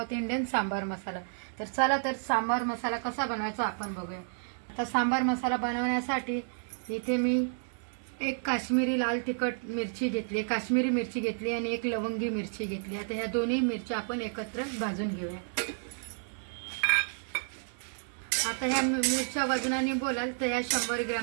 इंडियन सांबार मसाला। तर चला तर सांबार मसाला कसा बनवायचा आपण बघूया। आता सांबार मसाला बनवण्यासाठी इथे मी एक काश्मीरी लाल तिखट मिरची घेतली, काश्मीरी मिरची घेतली आणि एक लवंगी मिरची घेतली। आता ह्या दोन्ही मिरच्या आपण एकत्र भाजून घेऊया। आता ह्या मिरच्या वजनाने बोलाल तर ह्या 100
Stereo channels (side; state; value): left; silent; 57 dB below the other